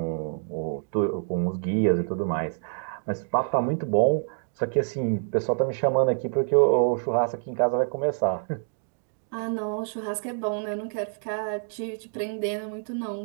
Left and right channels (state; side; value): silent; left; 59 dB below the other